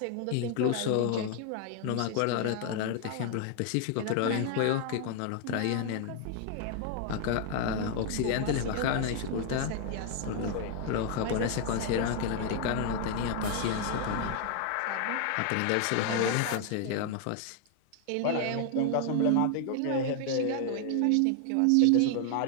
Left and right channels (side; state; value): both; different; correlation 0.00